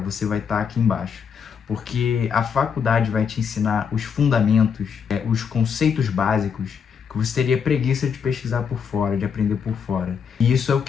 vai estar aqui embaixo. Porque a faculdade vai te ensinar os fundamentos, os conceitos básicos que você teria preguiça de pesquisar por fora, de aprender por fora. E isso é o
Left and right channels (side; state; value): right; quieter; 6.9 dB